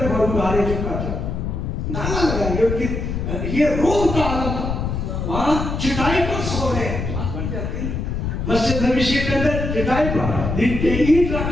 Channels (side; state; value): left; noise; rumble, 3 dB below the sound